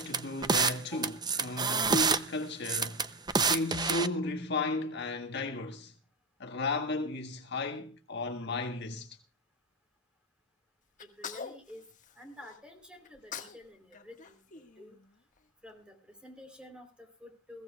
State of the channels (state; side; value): normal; both; correlation 0.14